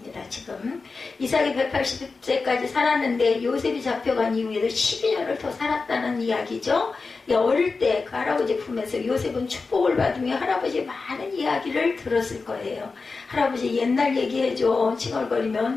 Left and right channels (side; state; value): right; quieter; 4.2 dB